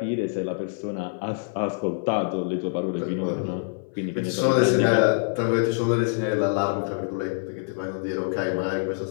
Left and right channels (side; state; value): right; silent; 58 dB below the other